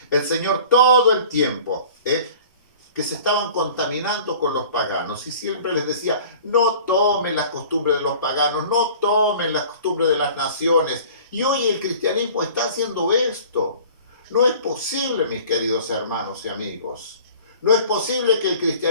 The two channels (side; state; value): both; inverted; correlation -0.46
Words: El Señor todo el tiempo, que se estaban contaminando con los paganos y siempre les decía, no tomen las costumbres de los paganos, no tomen las costumbres de las naciones. Y hoy el cristianismo está haciendo esto. No es posible, mis queridos hermanos y amigos, no es posible que el